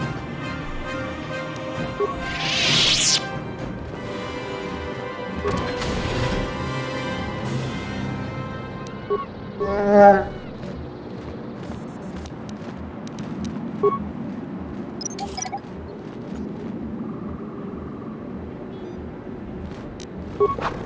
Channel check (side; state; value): both; identical; correlation 1.00